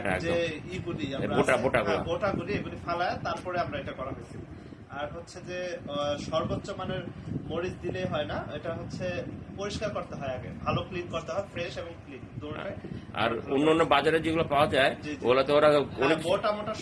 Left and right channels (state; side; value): identical; both; correlation 1.00